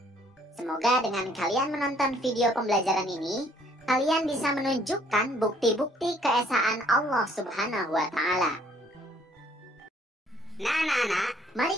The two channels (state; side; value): normal; both; correlation 0.62